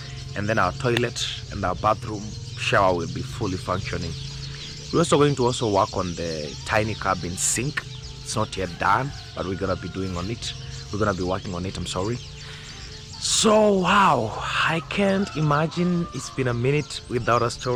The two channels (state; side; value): identical; both; correlation 1.00